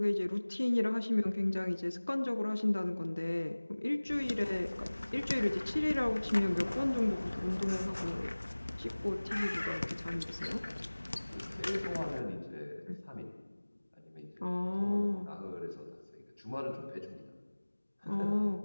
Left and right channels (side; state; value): both; inverted; correlation -1.00